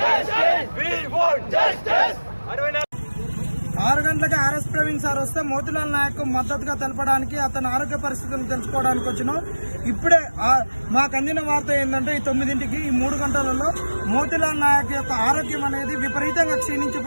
We want justice. 6 గంటలకు ఆర్ఎస్ ప్రవీణ్ సార్ వస్తే మోతిలాల్ నాయక్ మద్దతుగా తెలపడానికి, అతని ఆరోగ్య పరిస్థితులను తెలుసుకోవడానికి వచ్చినాం. ఇప్పుడే మాకు అందిన వార్త ఏంటంటే ఈ 9ంటికి ఈ 3 గంటలలో మోతిలాల్ నాయక్ యొక్క ఆరోగ్యం అనేది విపరీతంగా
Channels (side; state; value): both; inverted; correlation -1.00